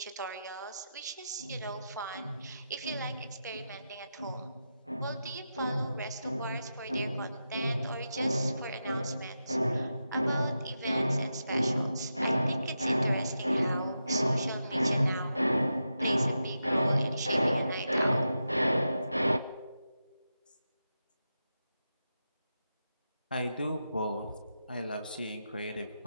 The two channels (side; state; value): both; inverted; correlation -0.88